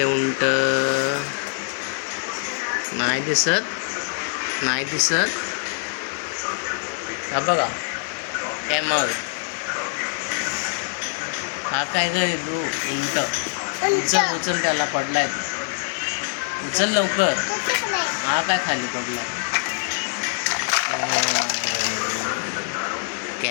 उंट नाही दिसत. नाही दिसत. हा बघा कॅमल. हा काय करे तू? उंट. उचल उचल, त्याला पडलाय. उचल लवकर. हा काय खाली पडलाय?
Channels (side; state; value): right; silent; digital silence